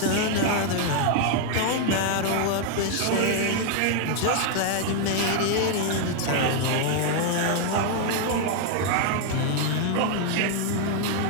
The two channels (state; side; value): different; both; correlation 0.00